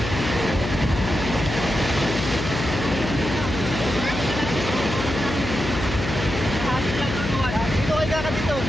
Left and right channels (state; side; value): noise; left; hum, 5 dB below the sound